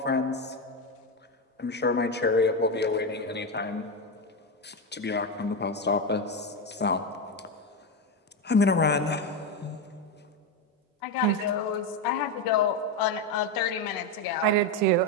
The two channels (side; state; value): both; normal; correlation 0.11